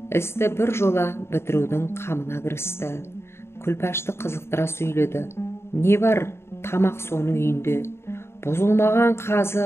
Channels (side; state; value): right; late; 0.12 ms